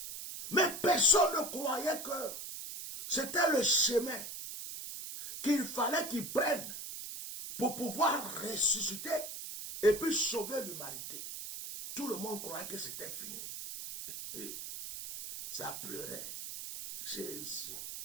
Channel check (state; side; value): noise; right; hiss, 8 dB below the sound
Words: Mais personne ne croyait que c'était le chemin qu'il fallait qu'ils prennent pour pouvoir ressusciter et puis sauver l'humanité. Tout le monde croyait que c'était fini. Et ça pleurait. Jésus.